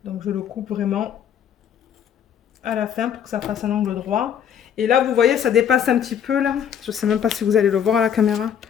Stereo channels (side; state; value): right; quieter; 8.8 dB